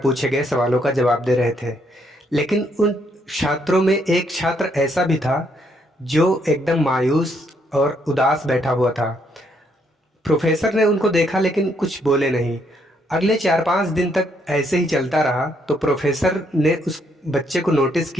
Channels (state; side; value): normal; both; correlation 0.72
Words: पूछे गए सवालों का जवाब दे रहे थे। लेकिन उन छात्रों में एक छात्र ऐसा भी था जो एकदम मायूस और उदास बैठा हुआ था। प्रोफेसर ने उनको देखा लेकिन कुछ बोले नहीं। अगले 4-5 दिन तक ऐसे ही चलता रहा। तो प्रोफेसर ने उस बच्चे को नोटिस